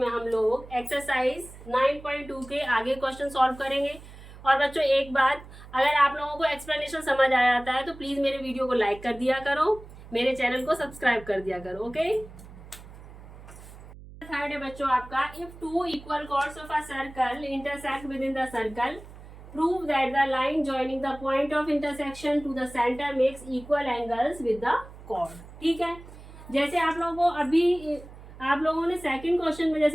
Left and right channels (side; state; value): right; noise; hum, 17 dB below the sound